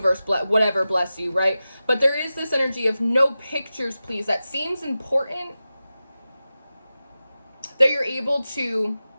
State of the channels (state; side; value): inverted; both; correlation -0.94